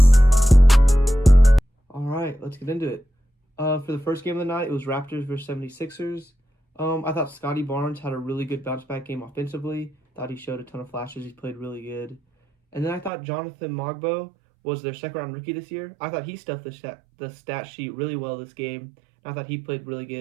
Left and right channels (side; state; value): left; drops out; at 13.1 s